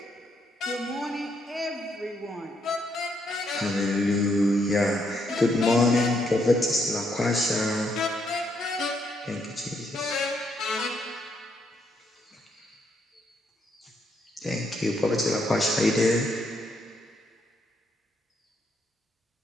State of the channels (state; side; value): normal; both; correlation 0.75